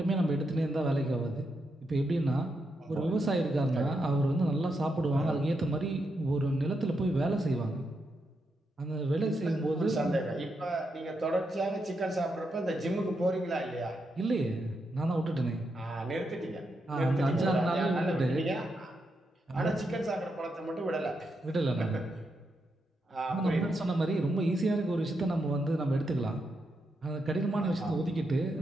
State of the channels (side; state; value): both; normal; correlation 0.83